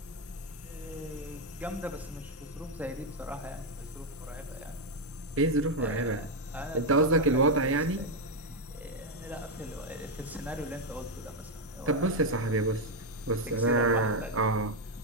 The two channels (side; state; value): both; normal; correlation 0.03